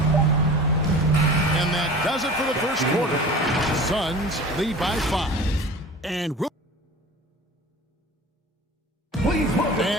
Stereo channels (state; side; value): normal; both; correlation 0.39